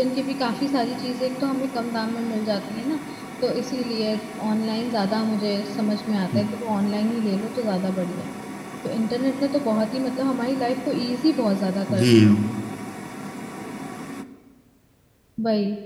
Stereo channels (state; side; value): identical; both; correlation 1.00